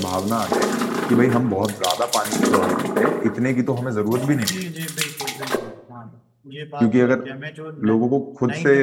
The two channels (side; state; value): both; identical; correlation 1.00